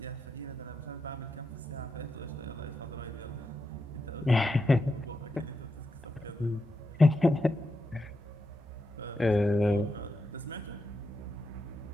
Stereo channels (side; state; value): both; normal; correlation 0.86